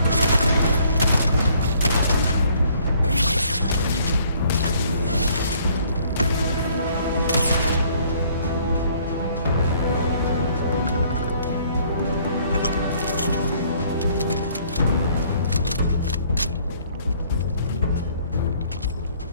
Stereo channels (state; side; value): inverted; both; correlation -0.61